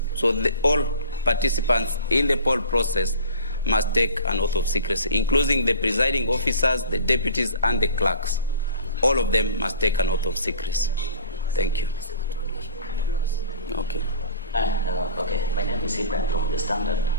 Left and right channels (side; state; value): both; inverted; correlation -0.42